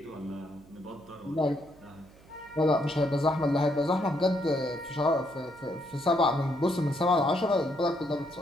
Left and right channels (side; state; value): right; noise; hum, 25 dB below the sound